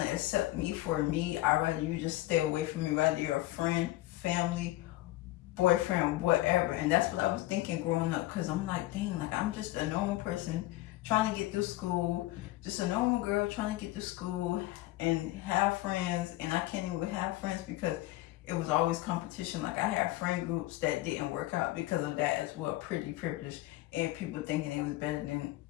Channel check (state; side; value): quieter; right; 17.5 dB